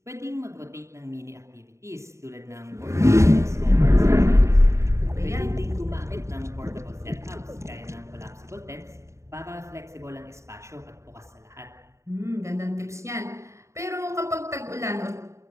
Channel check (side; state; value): left; late; 0.14 ms